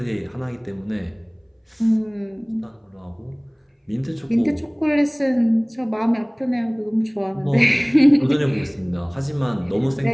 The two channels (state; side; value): identical; both; correlation 1.00